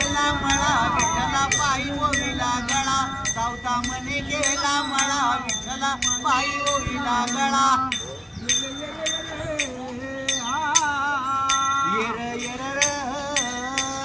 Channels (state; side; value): identical; both; correlation 1.00